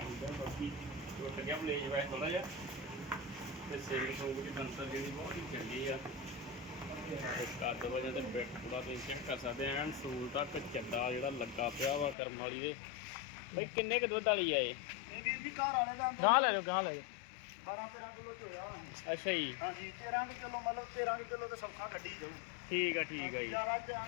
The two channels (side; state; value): right; drops out; at 12.2 s